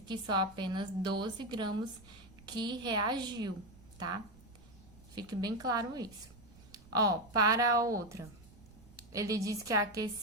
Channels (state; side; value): noise; right; rumble, 23 dB below the sound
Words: que só apenas 12 gramas que reagiu, tá? Fique bem claro isso. Para a outra, ele disse que